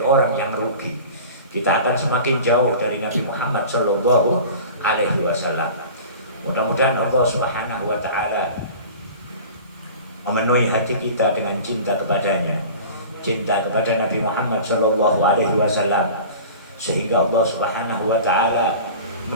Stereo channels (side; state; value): both; inverted; correlation -0.39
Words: orang yang rugi. Kita akan semakin jauh dari Nabi Muhammad SAW. Mudah-mudahan Allah Subhanahu wa Ta'ala memenuhi hati kita dengan cinta kepadanya. cinta kepada Nabi Muhammad Shallallahu Alaihi Wasallam, sehingga Allah Subhanahu Wa Taala